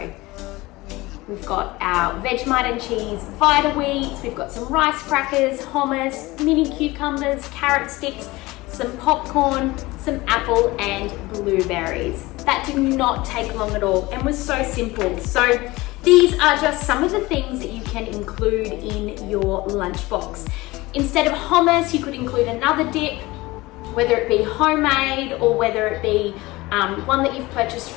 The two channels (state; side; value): quieter; right; 20.6 dB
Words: We've got our Vegemite and cheese vita wheats, we've got some rice crackers, hummus, mini cucumbers, carrot sticks, some popcorn, some apple and blueberries. That did not take long at all and was so simple. So these are just some of the things that you can include in your lunchbox. Instead of hummus, you could include another dip, whether it be homemade or whether it be one that you've purchased